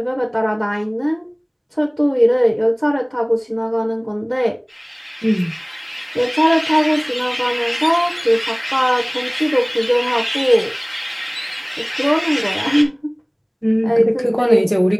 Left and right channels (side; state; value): both; identical; correlation 1.00